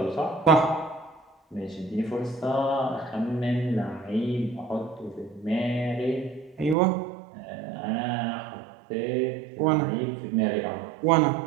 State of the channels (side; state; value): left; drops out; at 6.8 s